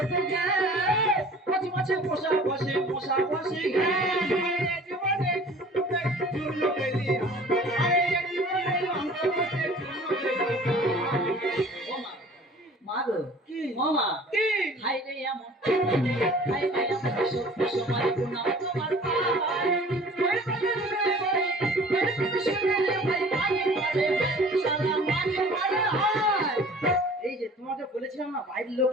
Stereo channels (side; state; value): both; normal; correlation 0.48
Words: যায়, পচা মাছে মশা বসে, মশা বসে ঘ্যাঁ। এই জীবনে তোকে চূর্ণ পেলি, আর এই জীবনে আমরা বসে চূর্ণ পেলি। ওমা মা গো, কি? মামা কি? হাই রে এমন, হাই রে এমন সভ্য সমাজ প্রণাম তোমার পায়। বইয়ের কথা শুনে রে ভাই, বইয়ের কথা শুনে রে ভাই, মাকে মারে সারা মাকে মারে হায়। এই যে তোমাকে বলেছিলাম না বাইরের লোক